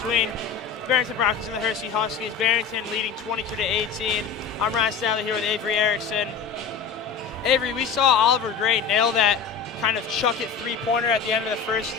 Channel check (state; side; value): quieter; right; 6.2 dB